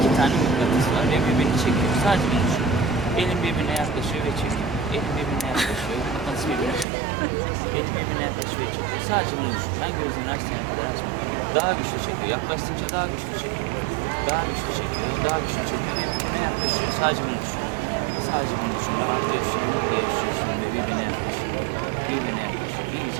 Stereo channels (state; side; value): drops out; left; at 6.9 s